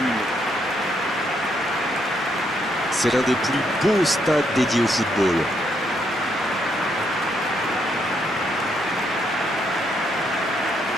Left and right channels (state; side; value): normal; both; correlation 0.75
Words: C'est l'un des plus beaux stades dédiés au football.